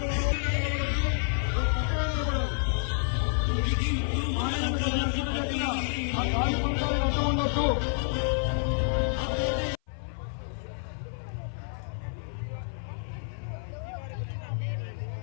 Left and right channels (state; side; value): silent; right; 56 dB below the other